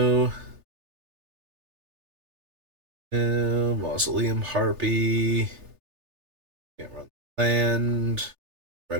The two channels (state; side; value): late; left; 3.3 ms